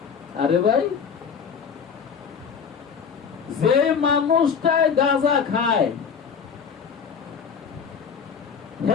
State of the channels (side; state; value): right; quieter; 6.5 dB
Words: আরে ভাই, যে মানুষটাই গাঁজা খায়